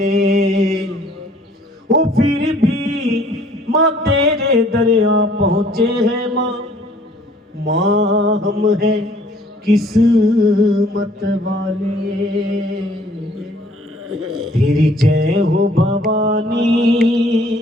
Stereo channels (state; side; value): normal; both; correlation 0.58